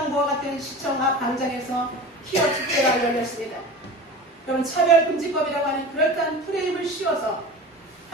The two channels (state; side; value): normal; both; correlation 0.35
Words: 같은 시청 앞 광장에서 히어 축제가 열렸습니다. 여러분, 차별금지법이라고 하는 그럴듯한 프레임을 씌워서